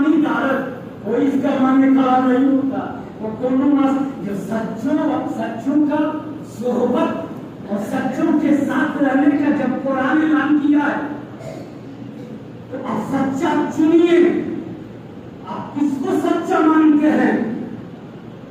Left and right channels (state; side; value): identical; both; correlation 1.00